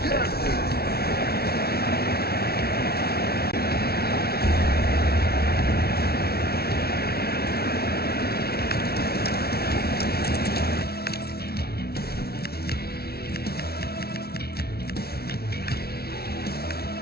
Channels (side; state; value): right; late; 0.45 ms